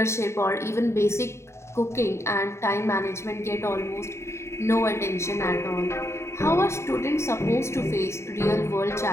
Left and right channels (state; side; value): late; right; 0.13 ms